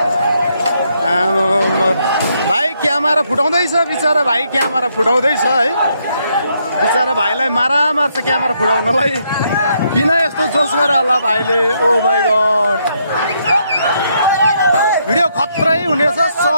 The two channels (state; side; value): inverted; both; correlation -0.75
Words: भाइ क्यामेरा फुटाउँदैछ बिचरा भाइ क्यामेरा फुटाउँदैछ है बिचरा भाइलाई मारा मार्छ क्यामेरा फुटाउनलाई किन यस्तो जोस गरे होला भाइले ओ माइ गॉड भिडियो खत्रै हुनेछ